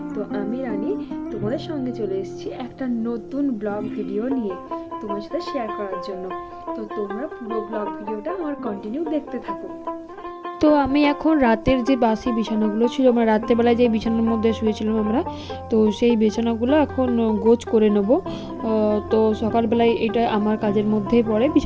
তো আমি রানী তোমাদের সঙ্গে চলে এসেছি একটা নতুন ব্লগ ভিডিও নিয়ে তোমার সাথে শেয়ার করার জন্য। তো তোমরা পুরো ব্লগ ভিডিওটা আমার কন্টিনিউ দেখতে থাকো। তো আমি এখন রাতের যে বাসি বিছানাগুলো ছিল, আমরা রাত্রেবেলায় যে বিছানার মধ্যে শুয়েছিলাম আমরা, তো সেই বিছানাগুলো এখন গোছ করে নেব। তো সকালবেলায় এটা আমার কাজের মধ্যেই পড়ে,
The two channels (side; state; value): both; identical; correlation 1.00